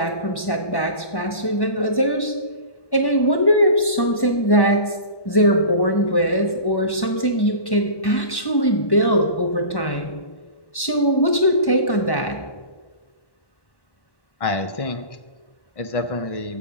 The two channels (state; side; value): late; right; 1.1 ms